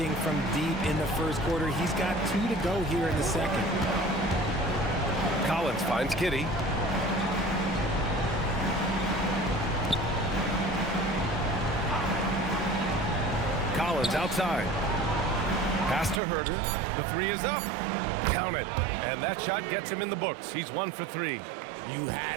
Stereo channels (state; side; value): drops out; left; at 16.2 s